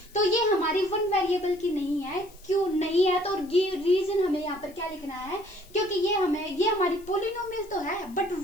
तो ये हमारी वन वेरिएबल की नहीं है। क्यों नहीं है, तो रीजन हमें यहाँ पर क्या लिखना है, क्योंकि ये हमारी पोलिनोमियल तो है बट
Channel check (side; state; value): left; noise; hiss, 25 dB below the sound